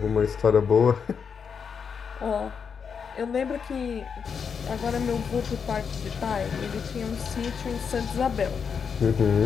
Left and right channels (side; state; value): right; quieter; 6.4 dB